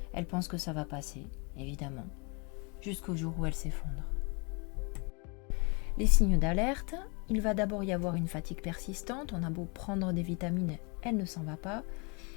Elle pense que ça va passer, évidemment, jusqu'au jour où elle s'effondre. Les signes d'alerte, il va d'abord y avoir une fatigue persistante, on a beau prendre des vitamines, elle ne s'en va pas.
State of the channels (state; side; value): quieter; right; 33.0 dB